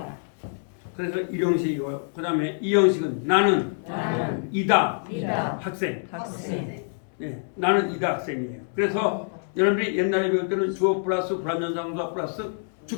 그래서 1형식이고요. 그 다음에 2형식은 나는 이다. 학생. 예, 나는 이다 학생이에요. 그래서 여러분들이 옛날에 배울 때는 주어 플러스 불완전자동사 플러스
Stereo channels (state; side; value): silent; right; 61 dB below the other